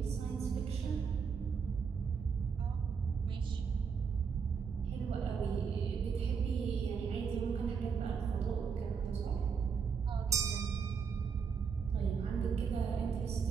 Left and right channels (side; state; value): left; quieter; 6.1 dB